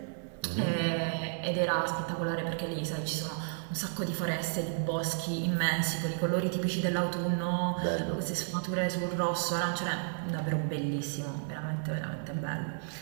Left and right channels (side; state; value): left; silent; digital silence